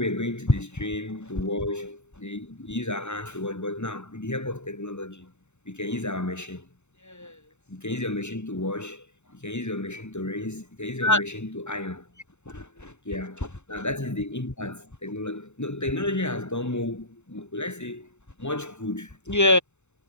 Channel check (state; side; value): late; right; 0.82 ms